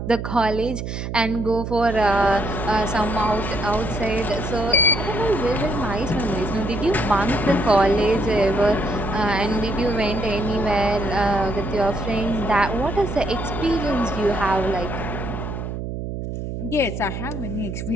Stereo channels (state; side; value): noise; right; hum, 5 dB below the sound